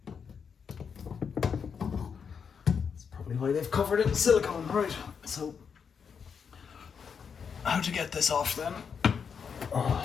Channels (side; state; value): right; quieter; 6.5 dB